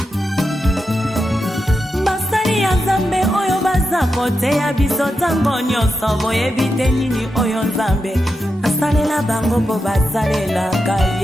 Basali ya Nzambe oyo baza koteya biso ntango nyonso boyebi te nini oyo Nzambe asalela bango mpo basalelaka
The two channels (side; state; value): both; normal; correlation 0.88